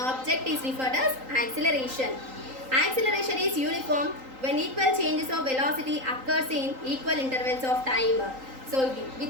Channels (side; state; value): left; late; 3.8 ms